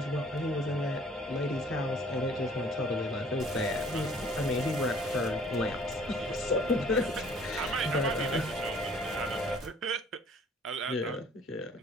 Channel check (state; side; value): normal; both; correlation 0.55